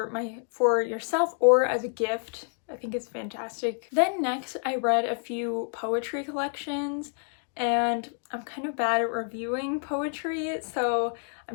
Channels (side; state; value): right; silent; 59 dB below the other